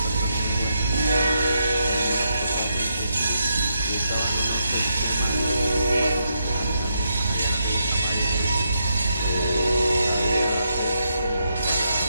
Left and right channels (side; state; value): both; inverted; correlation -0.80